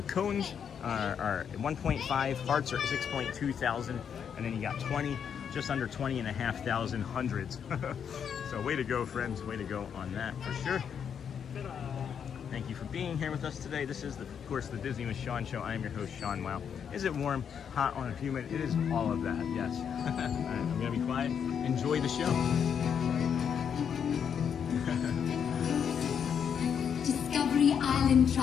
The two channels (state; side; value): quieter; right; 7.7 dB